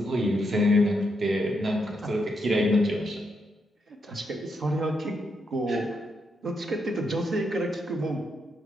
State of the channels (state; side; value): normal; both; correlation 0.80